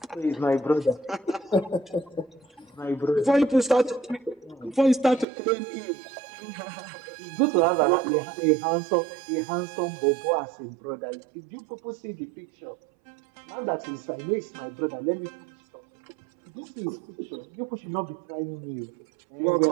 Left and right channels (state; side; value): drops out; left; at 5.2 s